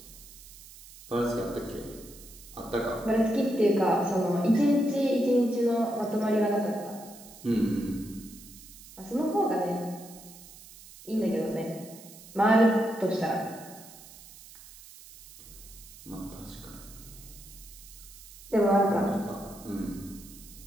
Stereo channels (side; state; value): right; noise; hiss, 19 dB below the sound